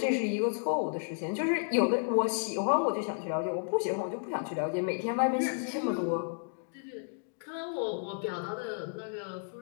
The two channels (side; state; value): right; silent; 56 dB below the other